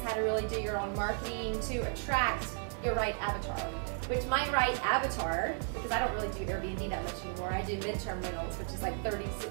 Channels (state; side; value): silent; left; 55 dB below the other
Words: how to really do your own marketing to attract your right avatar. Which my right avatar, because I don't really do Airbnb that much anymore, I do midterm rentals, which is like 30,